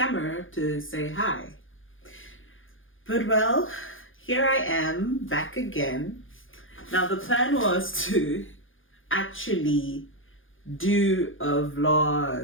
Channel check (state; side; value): late; right; 0.58 ms